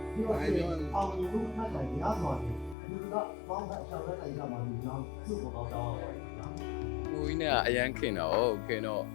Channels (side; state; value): right; drops out; at 2.8 s